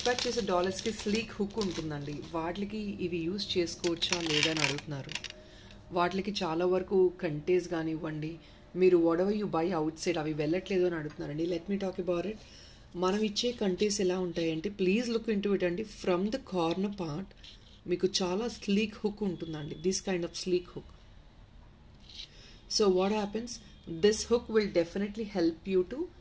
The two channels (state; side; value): identical; both; correlation 1.00